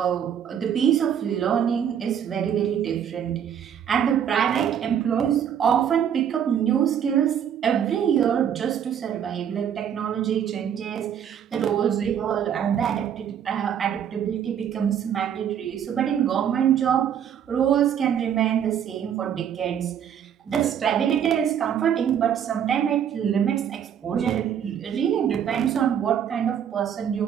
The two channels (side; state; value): left; quieter; 8.9 dB